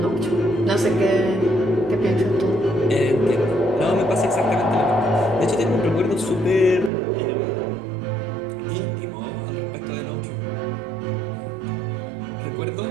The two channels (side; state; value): left; drops out; at 6.9 s